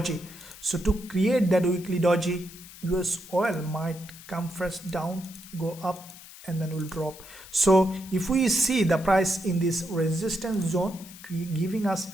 So to create that weekly doji, USOIL might come first down, go up, and then will drop. So if we see the price in this resistance zone giving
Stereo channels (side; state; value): left; noise; hiss, 17 dB below the sound